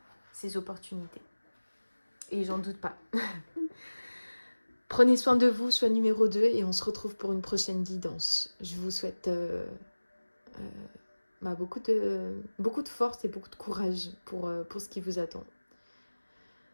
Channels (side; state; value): both; inverted; correlation -1.00